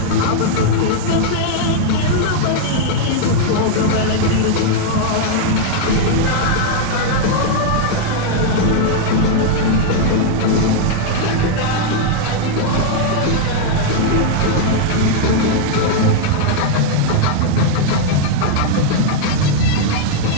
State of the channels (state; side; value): different; both; correlation -0.01